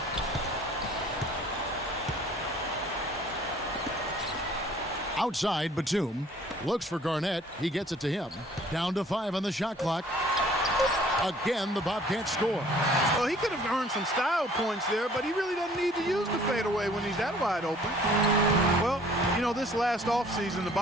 Outside, Batum looks for Garnett. He gets it to him. Down to 5 on the shot clock. Again, the Bobcats score. Well, he could have earned some style points there, but he really doesn't need to use the fadeaway when he's that wide open. Well, this last offseason, the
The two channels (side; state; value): both; normal; correlation 0.54